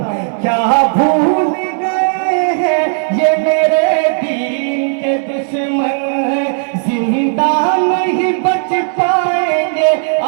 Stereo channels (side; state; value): left; silent; 67 dB below the other